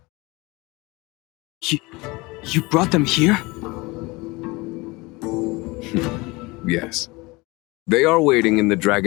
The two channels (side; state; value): right; quieter; 23.8 dB